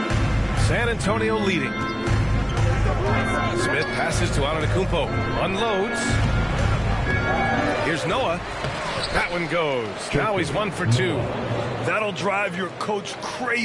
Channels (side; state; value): both; identical; correlation 1.00